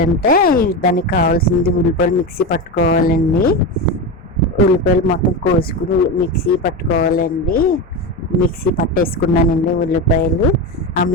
దానికి కావాల్సింది ఉల్లిపాయలు మిక్సీ పట్టుకోవాలండి. ఉల్లిపాయలు మొత్తం కోసుకుని మిక్సీ పట్టుకోవాలండి. మిక్సీ పట్టేసుకున్నానండి ఉల్లిపాయలు. ఆ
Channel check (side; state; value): both; normal; correlation 0.19